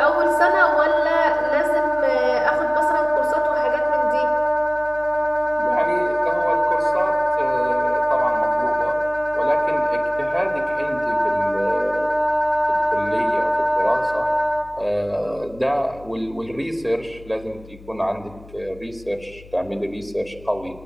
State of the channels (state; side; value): noise; left; hum, 21 dB below the sound